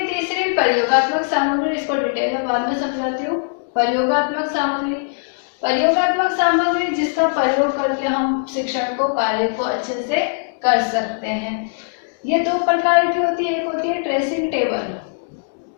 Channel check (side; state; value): right; silent; digital silence